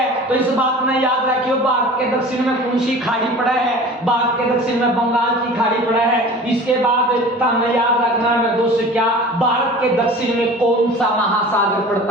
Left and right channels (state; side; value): normal; both; correlation 0.41